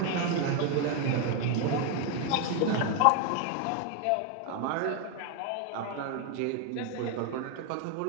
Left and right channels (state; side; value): different; both; correlation 0.01